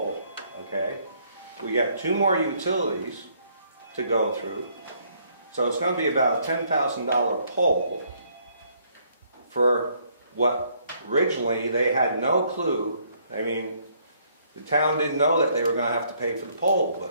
okay? We got 2 more utilities to go through. So it's going to be about a $10,000 pole for what originally they had no clue. I mean, the town didn't know that they were going to have to pay for the pole,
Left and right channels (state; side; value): inverted; both; correlation -0.67